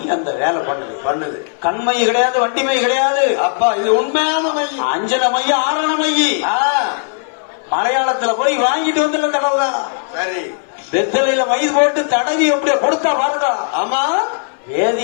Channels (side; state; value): right; silent; digital silence